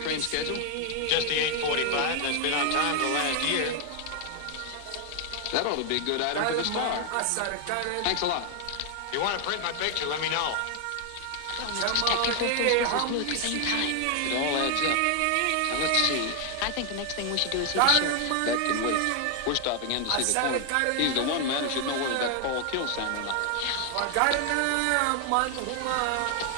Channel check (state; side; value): different; both; correlation 0.00